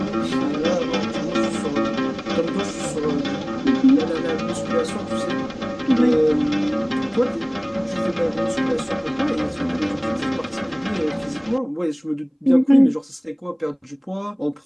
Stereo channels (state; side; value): identical; both; correlation 1.00